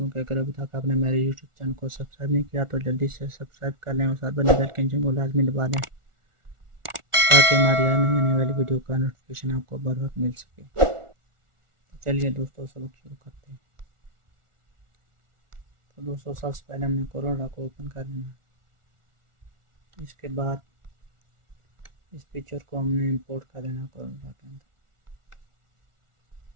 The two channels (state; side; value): late; left; 1.4 ms